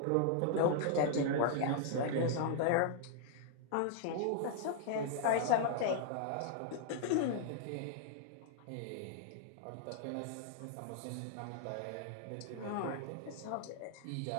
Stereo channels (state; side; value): different; both; correlation 0.00